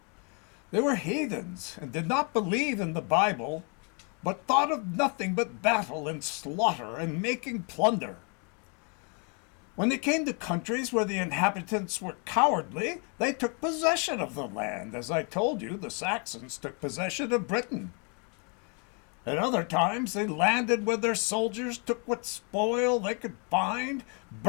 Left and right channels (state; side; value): quieter; right; 35.7 dB